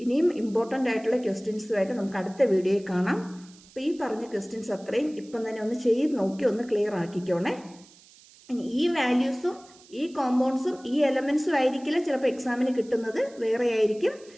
ഇനിയും ഇമ്പോർട്ടൻ്റ് ആയിട്ടുള്ള ക്വസ്റ്റ്യൻസുമായിട്ട് നമുക്ക് അടുത്ത വീഡിയോയിൽ കാണാം. അപ്പോൾ ഈ പറഞ്ഞ ക്വസ്റ്റ്യൻസ് അത്രയും ഇപ്പം തന്നെ ഒന്ന് ചെയ്ത് നോക്കി ഒന്ന് ക്ലിയർ ആക്കിക്കോണേ. ഇനി ഈ വാല്യൂസും ഈ കോമ്പൗണ്ട്സും ഈ എലമെൻസും ആയിരിക്കില്ല ചിലപ്പോൾ എക്സാമിന് കിട്ടുന്നത്, വേറെ ആയിരിക്കും.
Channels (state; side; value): noise; right; hiss, 25 dB below the sound